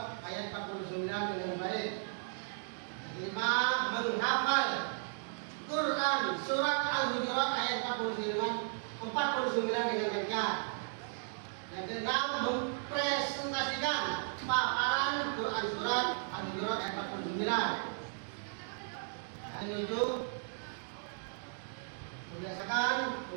ayat 49 dengan baik. Yang kelima, menghafal Quran surat Al-Hujurat ayat 49 dengan lancar. Yang keenam, mempresentasikan paparan Quran surat Al-Hujurat ayat 49. Yang ketujuh, membiasakan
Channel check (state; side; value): silent; left; digital silence